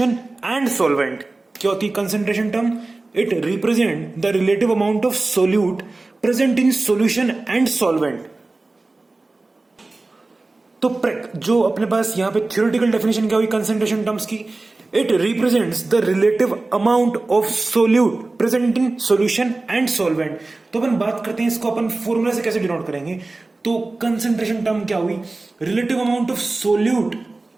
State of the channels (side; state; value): left; quieter; 3.2 dB